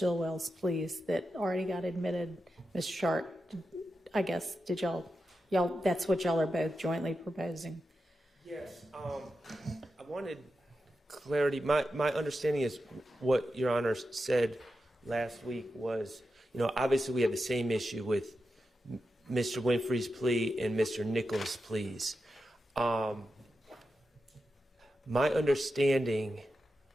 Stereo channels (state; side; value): normal; both; correlation 0.89